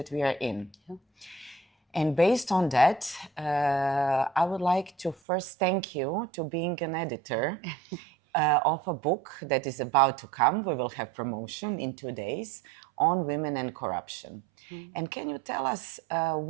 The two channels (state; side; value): drops out; left; at 5.2 s